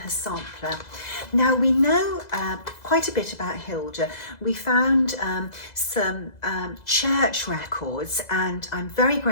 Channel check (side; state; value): right; late; 2.0 ms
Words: sampler. Now, we know quite a bit about Hilda. We found some church records, and I'm very